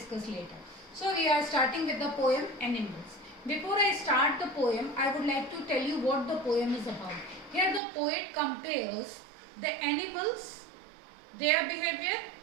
later. So we are starting with the poem Animals. Before I start the poem, I would like to tell you what the poem is about. Here the poet compares the animals, their behavior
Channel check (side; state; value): left; drops out; at 7.8 s